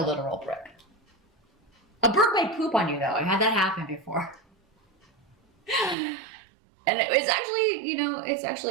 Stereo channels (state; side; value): drops out; left; at 6.0 s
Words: literal brick. A bird might poop on you, though. I had that happen before. And it was actually, you know, it's